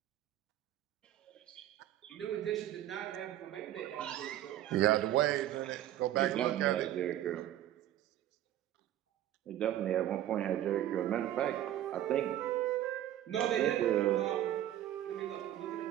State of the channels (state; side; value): quieter; left; 12.6 dB